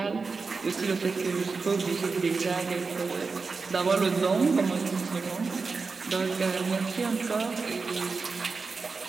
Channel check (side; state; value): left; quieter; 4.5 dB